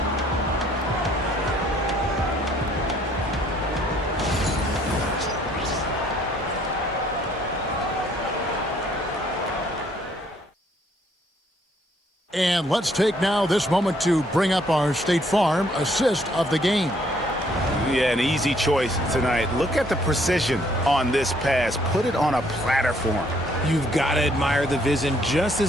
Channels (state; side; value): normal; both; correlation 0.65